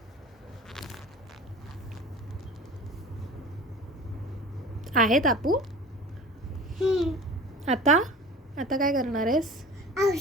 आहे तापू. आता आता काय करणार आहेस?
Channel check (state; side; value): normal; both; correlation 0.38